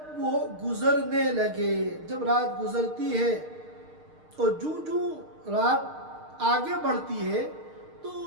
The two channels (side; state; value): left; late; 6.5 ms